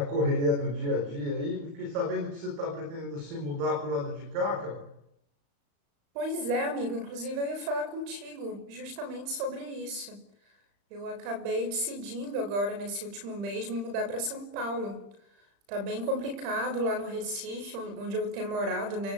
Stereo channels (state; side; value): late; left; 35 ms